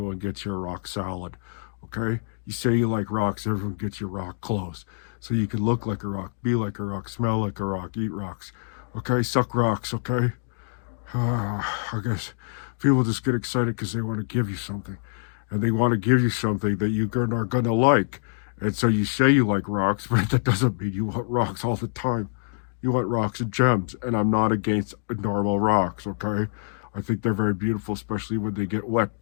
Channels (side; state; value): right; silent; digital silence